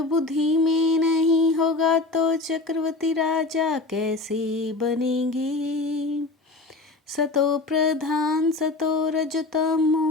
बुद्धि में नहीं होगा तो चक्रवर्ती राजा कैसे बनेंगे। सतो प्रधान सतो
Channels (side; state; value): right; quieter; 3.3 dB